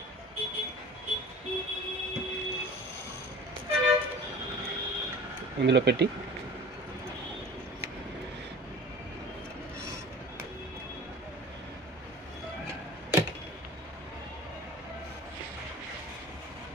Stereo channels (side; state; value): both; normal; correlation 0.41